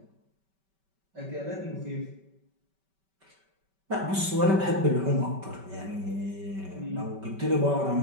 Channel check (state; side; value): late; left; 5.2 ms